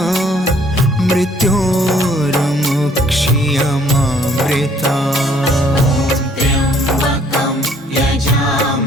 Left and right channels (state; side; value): normal; both; correlation 0.61